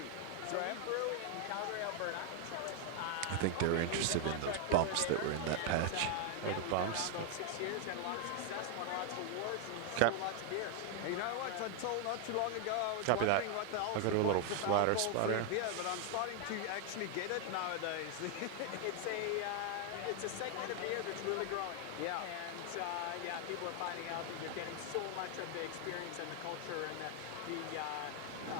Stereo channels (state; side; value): different; both; correlation 0.00